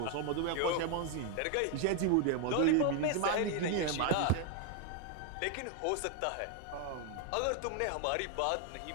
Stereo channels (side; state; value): both; different; correlation 0.01